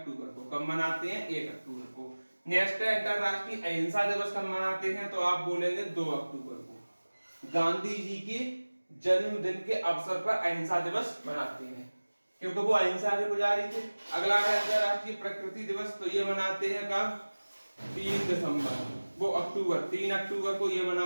को। कब मनाते हैं? 1 अक्टूबर को। नेक्स्ट है अंतरराष्ट्रीय अहिंसा दिवस कब मनाते हैं? तो आप बोलेंगे 2 अक्टूबर को। गांधी जी के जन्मदिन के अवसर पर अहिंसा दिवस मनाते हैं, क्योंकि वो अहिंसा के पुजारी थे। अगला है अंतरराष्ट्रीय प्रकृति दिवस, तो ये मनाते हैं कब? 3 दिसंबर, वो अक्टूबर 3 अक्टूबर को ये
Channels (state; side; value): inverted; both; correlation -1.00